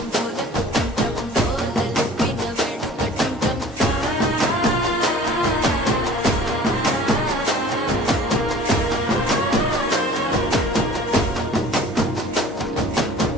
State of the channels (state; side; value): normal; both; correlation 0.47